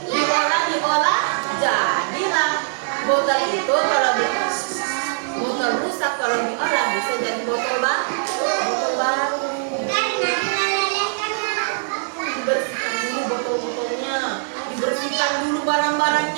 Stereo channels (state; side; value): silent; left; 64 dB below the other